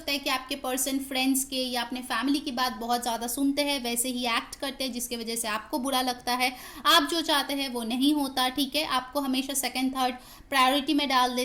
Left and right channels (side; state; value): both; identical; correlation 1.00